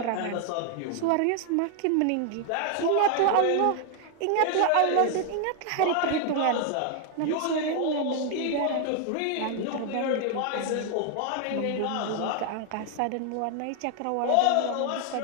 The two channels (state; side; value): different; both; correlation 0.00